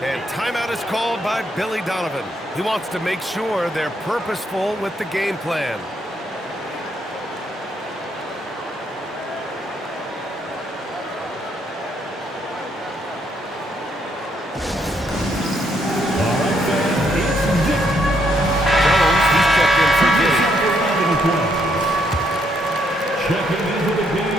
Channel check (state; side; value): normal; both; correlation 0.73